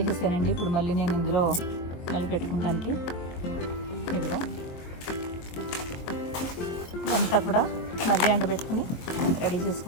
ఇప్పుడు మళ్ళీ నేను ఇందులో మళ్ళీ పెట్టుకోవడానికి ఇదిగా అంతా కూడా మళ్ళీ ఎండబెట్టుకుని రెడీ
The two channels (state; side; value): late; right; 23 ms